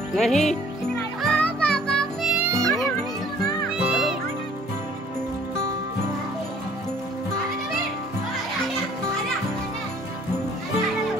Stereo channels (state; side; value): normal; both; correlation 0.56